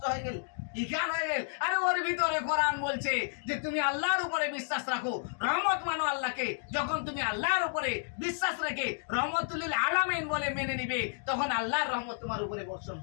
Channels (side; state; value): right; silent; digital silence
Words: হয়ে গেল, ইখান হয়ে গেল। আরে ওর ভিতরে কোরআন বলছে যে তুমি আল্লাহর উপরে বিশ্বাস রাখো, রহমত মানো আল্লাহকে। যখন তুমি আল্লাহর উপরে বিশ্বাস রেখে রহমতুল আলামিন বলে মেনে নিবে, তখন আল্লাহর রহমত তোমার উপরে বর্ষণ